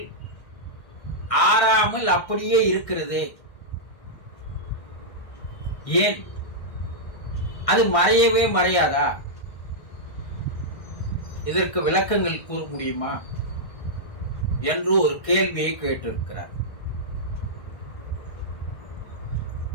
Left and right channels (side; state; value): right; late; 1.6 ms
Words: ஆறாமல் அப்படியே இருக்கிறதே, ஏன் அது மறையவே மறையாதா? இதற்கு விளக்கங்கள் கூற முடியுமா என்று ஒரு கேள்வியை கேட்டிருக்கிறார்.